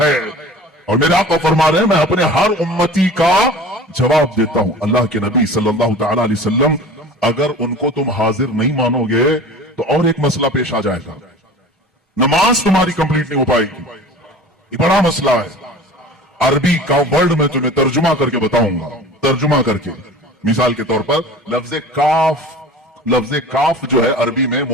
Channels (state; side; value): normal; both; correlation 0.40